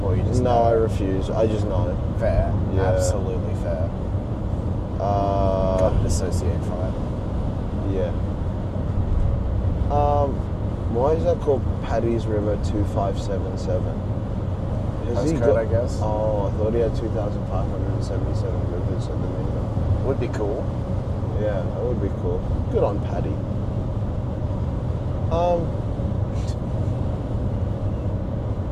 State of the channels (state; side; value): identical; both; correlation 1.00